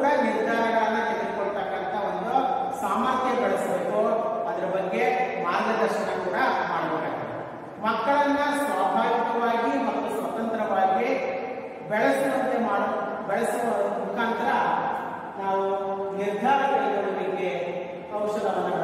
ನಿರ್ಧಾರಗಳನ್ನ ತೆಗೆದುಕೊಳ್ತಕ್ಕಂಥ ಒಂದು ಸಾಮರ್ಥ್ಯ ಬೆಳೆಸಬೇಕು. ಅದರ ಬಗ್ಗೆ ಮಾರ್ಗದರ್ಶನ ಕೂಡ ಮಾಡಬೇಕಾಗ್ತದೆ. ಮಕ್ಕಳನ್ನ ಸ್ವಾಭಾವಿಕವಾಗಿ ಮತ್ತು ಸ್ವತಂತ್ರವಾಗಿ ಬೆಳೆಸುವ ಮುಖಾಂತರ ನಾವು ನಿರ್ಧಾರ ಕೈಗೊಳ್ಳುವಿಕೆ ಕೌಶಲವನ್ನು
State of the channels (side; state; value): both; identical; correlation 1.00